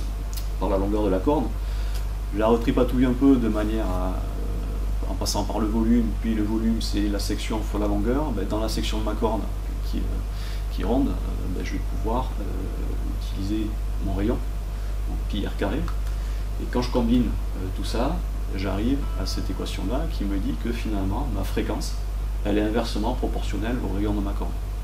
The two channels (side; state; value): both; identical; correlation 1.00